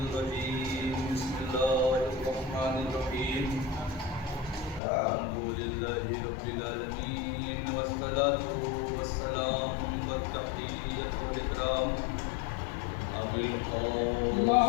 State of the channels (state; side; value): drops out; right; at 4.8 s